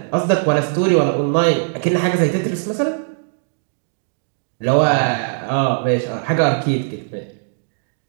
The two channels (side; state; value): left; silent; digital silence